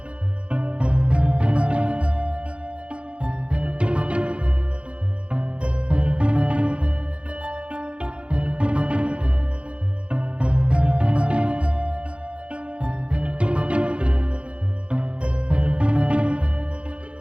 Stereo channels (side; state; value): left; late; 0.058 ms